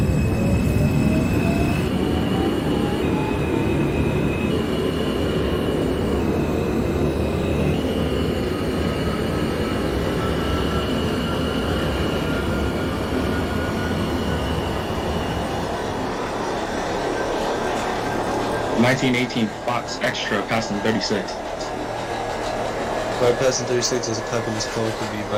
1918 Fox Extra passing 36. Bypassing 36 as a copy in this call could be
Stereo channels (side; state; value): both; identical; correlation 1.00